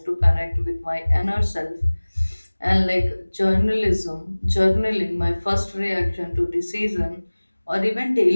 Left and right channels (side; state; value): both; inverted; correlation -1.00